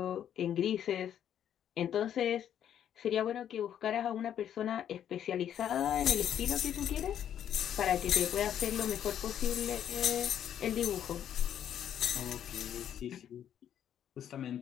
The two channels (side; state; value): right; quieter; 9.9 dB